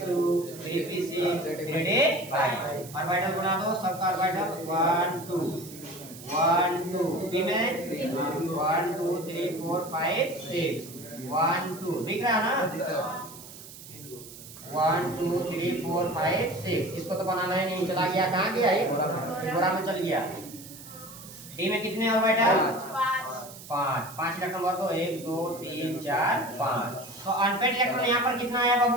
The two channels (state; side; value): noise; right; hiss, 16 dB below the sound